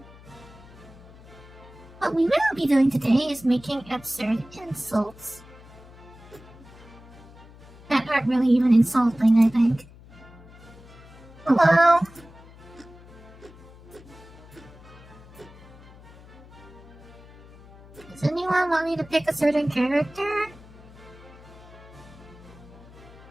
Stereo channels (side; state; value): left; noise; hum, 21 dB below the sound